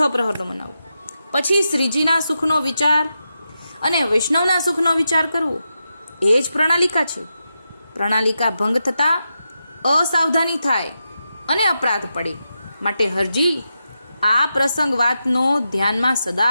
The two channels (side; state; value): both; inverted; correlation -0.88